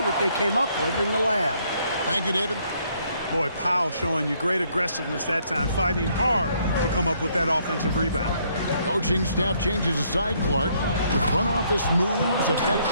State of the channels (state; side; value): inverted; both; correlation -0.69